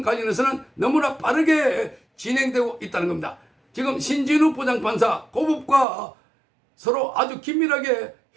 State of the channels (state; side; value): drops out; left; at 5.9 s